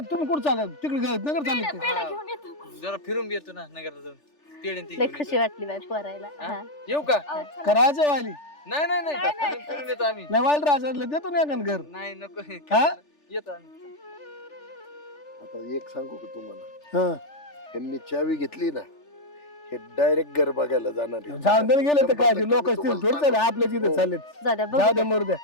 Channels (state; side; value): late; right; 3.4 ms